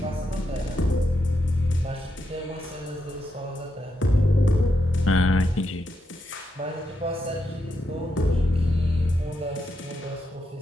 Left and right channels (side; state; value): both; normal; correlation 0.83